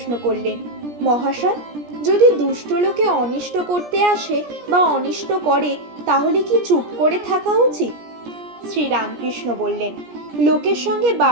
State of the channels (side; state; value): left; late; 17 ms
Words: করলেন, মহাশয়, যদি দুষ্ট লোকে অনিষ্ট করতে আসে বা অনিষ্ট করে তাহলে কি চুপ করে থাকা উচিত? শ্রী রামকৃষ্ণ বললেন, লোকের সঙ্গে